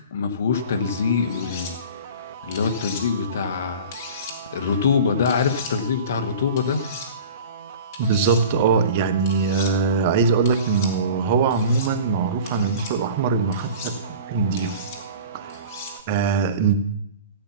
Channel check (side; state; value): both; inverted; correlation -0.38